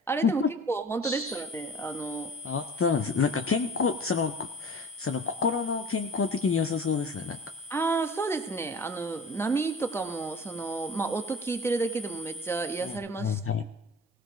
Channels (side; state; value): both; normal; correlation 0.41